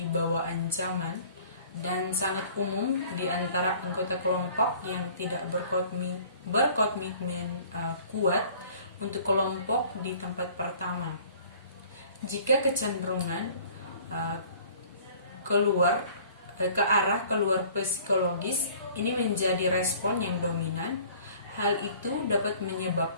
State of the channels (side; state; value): both; inverted; correlation -0.51